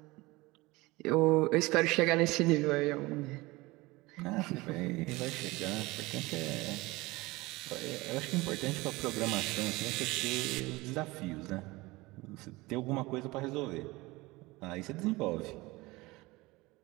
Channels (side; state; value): left; quieter; 21.7 dB